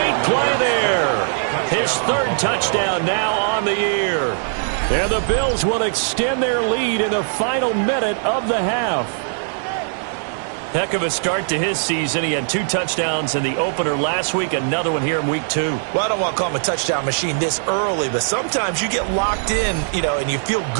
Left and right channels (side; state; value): left; silent; digital silence